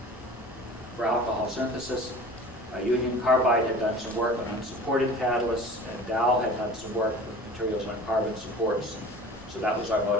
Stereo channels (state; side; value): normal; both; correlation 0.41